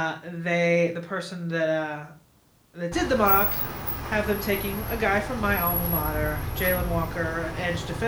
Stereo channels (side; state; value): both; identical; correlation 1.00